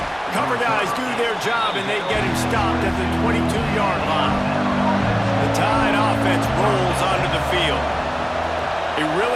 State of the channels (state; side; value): identical; both; correlation 1.00